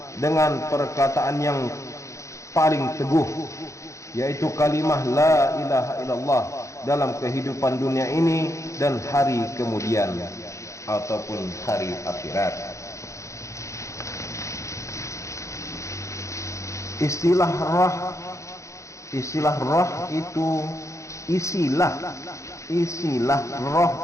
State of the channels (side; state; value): right; late; 0.15 ms